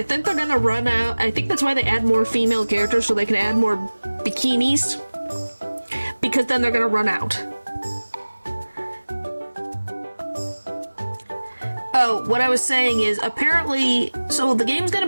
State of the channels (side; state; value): both; inverted; correlation -1.00